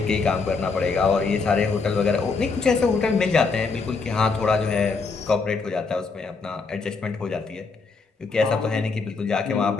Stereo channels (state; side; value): quieter; right; 4.5 dB